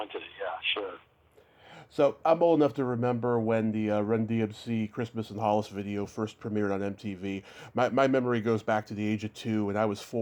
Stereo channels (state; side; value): identical; both; correlation 1.00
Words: yeah, sure. So I'm old enough to remember when the Run D.M.C. Christmas in Hollis video first premiered on MTV. My memory goes back to the age of 2, and I was